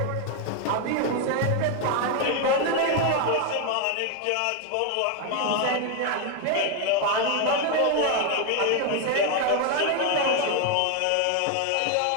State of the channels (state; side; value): different; both; correlation 0.01